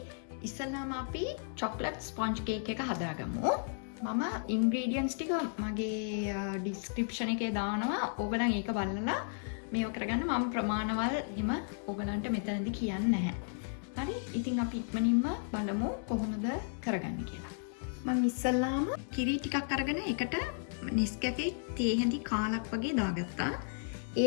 ඉස්සෙල්ලාම අපි chocolate sponge cake එක හදාගමු. මම ingredients ටික මගේ description එකේ දානවා. ඕගොල්ලන් ඒක බලලා මේව කරගන්න. මම ප්‍රමාණවල් හිම ඕගොල්ලන්ට මෙතනදී කියන්නේ නැහැ. හරි? ඉතින් අපි ඉක්මනින්ම බලමු කොහොමද කරගන්නේ කියලා. මම ඉස්සෙල්ලාම කිරි ටිකක් අරගෙන ඒකට Nescafe තේ හැඳි කාලක් වගේ දාගත්තා.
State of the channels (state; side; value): silent; right; digital silence